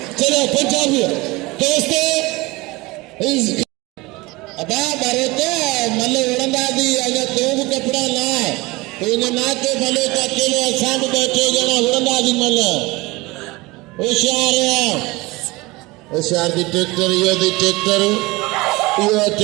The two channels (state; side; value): quieter; left; 22.6 dB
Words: चलो पंजाबी दोस्तों अबा भरोते मल उड़ंदा दी अगर तू भी कपड़ा ना तो इन्हें ना के भले तो अकेले असां भी बैठे जना उड़ंदा दी मल होशियार दी ट्रैक्टर यो दी ट्रैक्टर यो